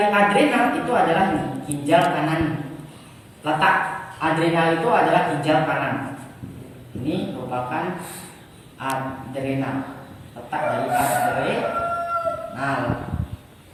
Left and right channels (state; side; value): identical; both; correlation 1.00